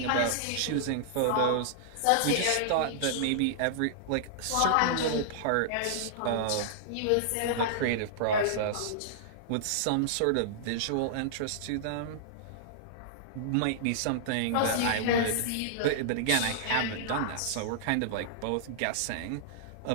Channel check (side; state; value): both; different; correlation -0.02